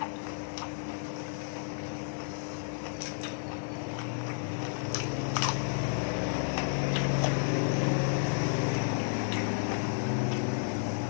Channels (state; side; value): silent; right; 56 dB below the other